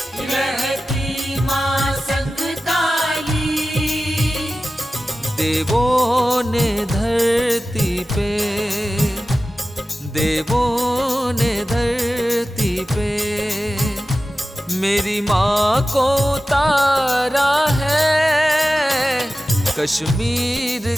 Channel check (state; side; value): normal; both; correlation 0.95